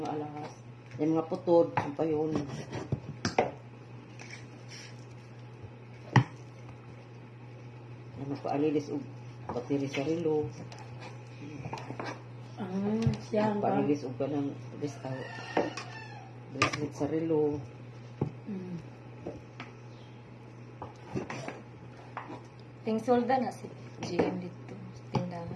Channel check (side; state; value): both; identical; correlation 1.00